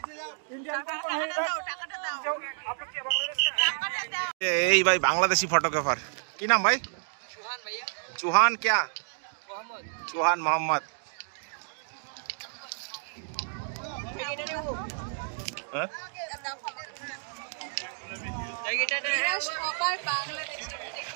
यही भाई बांग्लादेशी फोटोग्राफर की नाम भाई? चौहान भैया। चौहान क्या? मोहम्मद। चौहान मोहम्मद।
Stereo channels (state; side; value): silent; left; digital silence